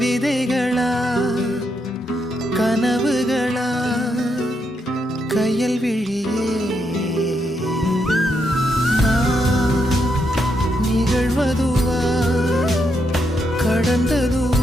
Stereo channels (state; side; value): normal; both; correlation 0.80